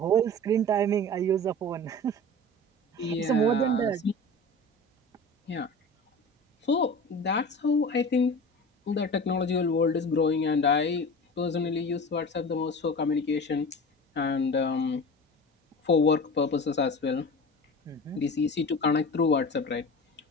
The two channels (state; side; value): normal; both; correlation 0.35